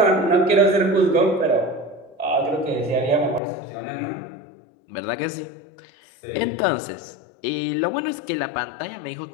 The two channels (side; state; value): right; drops out; at 3.4 s